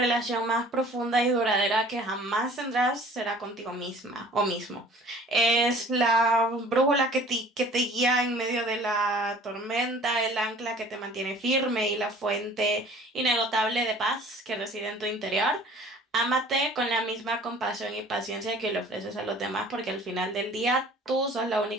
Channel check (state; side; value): normal; both; correlation 0.49